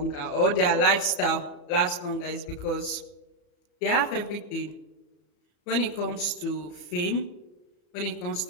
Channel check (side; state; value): right; late; 34 ms